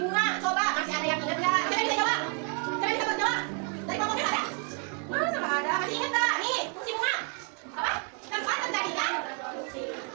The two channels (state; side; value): quieter; left; 39.6 dB